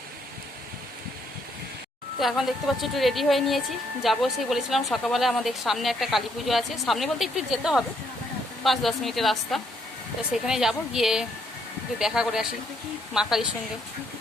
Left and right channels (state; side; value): normal; both; correlation 0.72